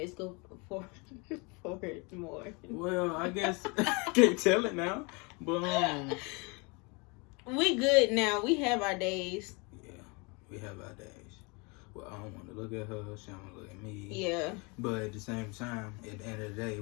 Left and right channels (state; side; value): quieter; right; 29.8 dB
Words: go forward more. Well, I guess I can't tell it now, but we good now. We have our days. Yeah, we have our days. Well, I don't want to look at her. She don't want to look at me. Yeah. But at the same time, at the end of the day,